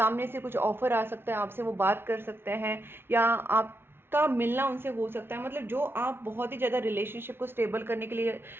से कुछ ऑफर आ सकता है, आपसे वो बात कर सकते हैं, या आप का मिलना उनसे हो सकता है। मतलब जो आप बहुत ही ज़्यादा रिलेशनशिप को स्टेबल करने के लिए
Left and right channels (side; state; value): left; late; 0.11 ms